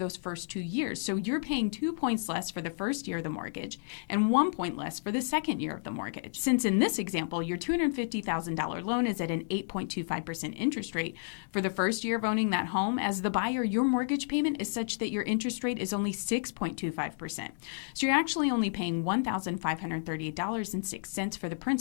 first 2 years. So you're paying 2 points less for the first year of the mortgage and 1 point less for the second year of the mortgage. Since in this example, your $250,000 loan is at an 8.25% interest rate for the first year of owning that home, as the buyer, your mortgage payment is such that your interest rate is only 6.25%. So you're actually only paying $1,538.06 for the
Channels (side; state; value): right; silent; digital silence